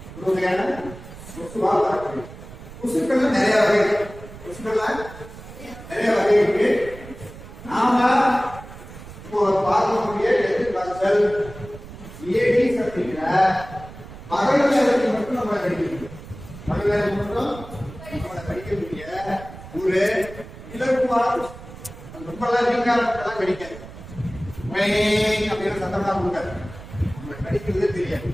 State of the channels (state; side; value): noise; right; rumble, 15 dB below the sound